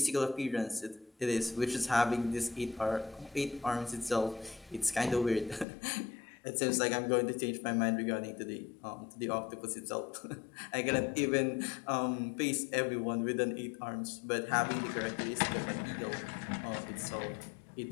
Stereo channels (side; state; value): right; drops out; at 5.7 s